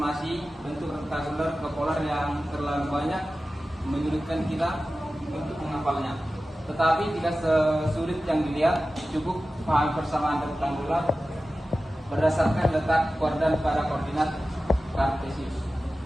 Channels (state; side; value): normal; both; correlation 0.95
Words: bentuk rektangular ke polar yang terlalu banyak menyulitkan kita untuk menghafalnya. Tetapi tidak sesulit yang dilihat, cukup paham persamaan rektangular berdasarkan letak koordinat pada koordinat kartesius.